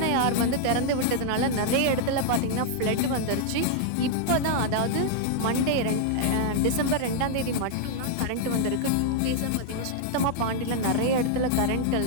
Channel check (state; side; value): different; both; correlation -0.01